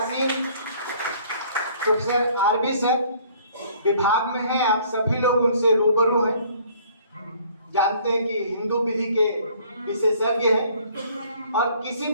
प्रोफेसर आरबी सर विभाग में हैं, आप सभी लोग उनसे रूबरू हैं, जानते हैं कि हिंदू विधि के विशेषज्ञ हैं और किसी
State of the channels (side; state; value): both; inverted; correlation -0.57